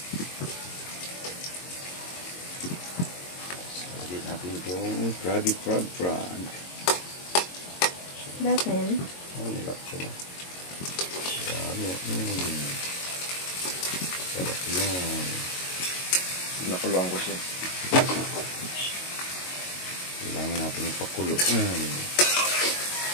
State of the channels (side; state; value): right; late; 22 ms